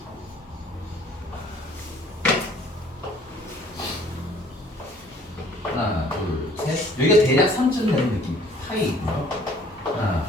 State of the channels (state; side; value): normal; both; correlation 0.56